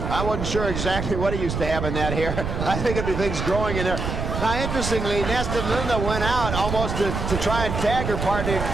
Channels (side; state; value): right; noise; rumble, 4 dB below the sound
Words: I wasn't sure exactly what he used to have in that hair. I think it'd be things growing in there. Now, interestingly, Nasty Linda went out almost to try and tag her partner,